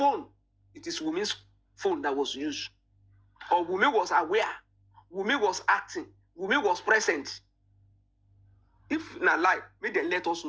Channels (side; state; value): both; identical; correlation 1.00